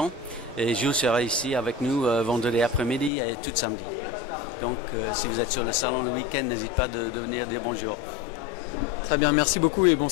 Et Jules sera ici avec nous vendredi après-midi et tout samedi. Donc, si vous êtes sur le salon le week-end, n'hésitez pas de venir dire bonjour. Très bien, merci beaucoup et bon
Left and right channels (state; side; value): drops out; right; at 3.1 s